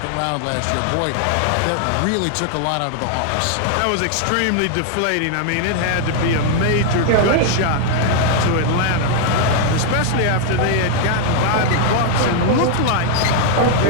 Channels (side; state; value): both; different; correlation 0.00